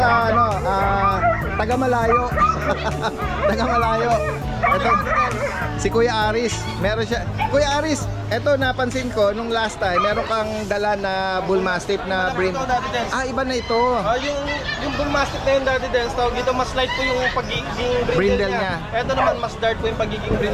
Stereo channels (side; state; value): both; identical; correlation 1.00